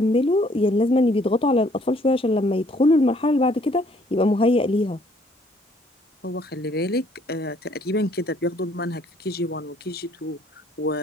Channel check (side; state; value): both; normal; correlation 0.63